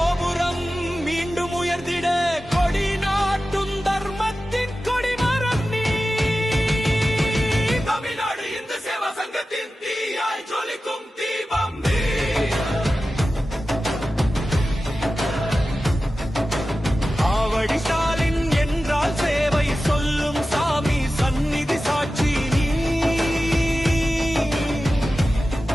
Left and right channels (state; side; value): normal; both; correlation 0.94